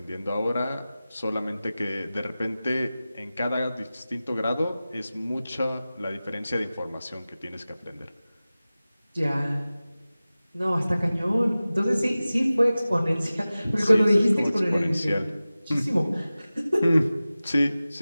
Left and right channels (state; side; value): inverted; both; correlation -0.97